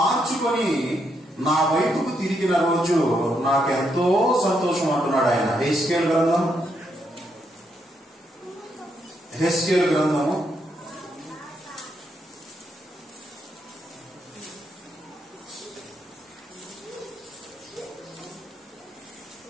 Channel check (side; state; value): both; normal; correlation 0.78